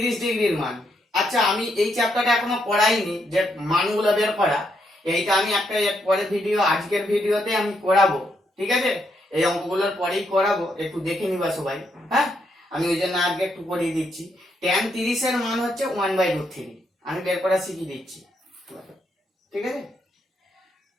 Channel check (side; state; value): both; normal; correlation 0.77